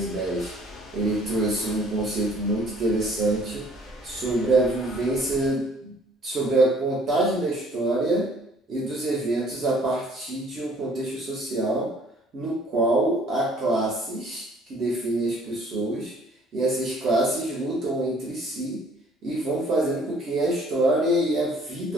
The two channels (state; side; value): normal; both; correlation 0.57